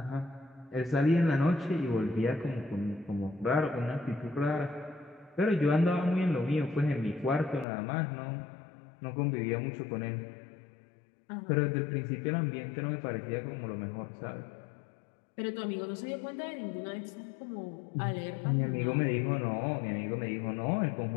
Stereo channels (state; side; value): drops out; right; at 7.7 s